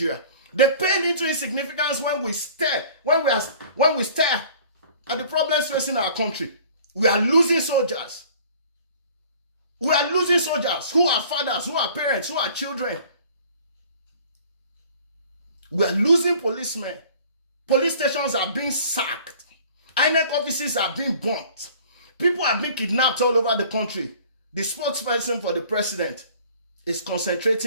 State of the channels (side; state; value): both; inverted; correlation -0.50